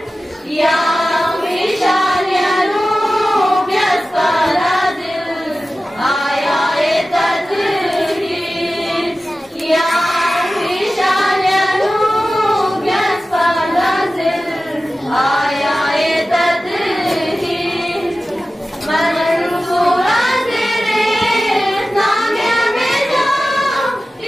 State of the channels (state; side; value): normal; both; correlation 0.95